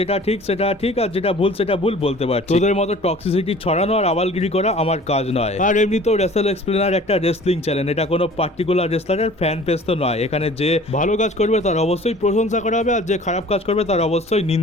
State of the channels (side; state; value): both; normal; correlation 0.47